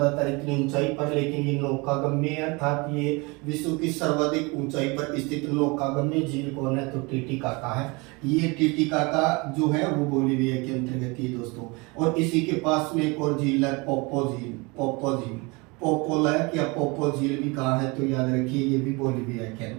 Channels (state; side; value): quieter; left; 27.0 dB